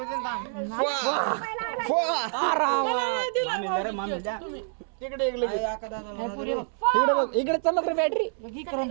इकडे इकडे चमक रे बॅटरी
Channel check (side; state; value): left; silent; 60 dB below the other